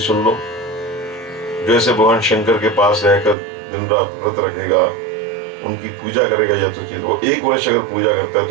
लो। जैसे भगवान शंकर के पास रहकर दिन रात व्रत रखेगा, उनकी पूजा करेगा यथोचित, वो 1 वर्ष अगर पूजा करता है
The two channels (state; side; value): drops out; left; at 3.4 s